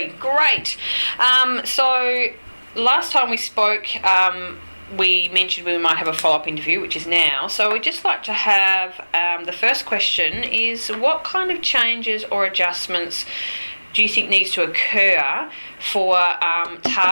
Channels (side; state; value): both; inverted; correlation -1.00